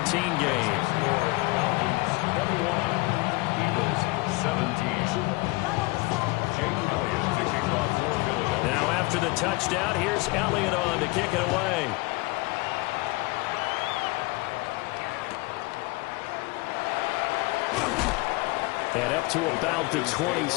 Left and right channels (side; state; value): right; quieter; 24.1 dB